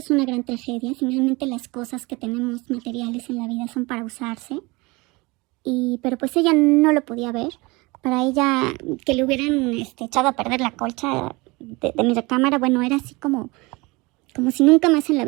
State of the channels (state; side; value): quieter; left; 24.5 dB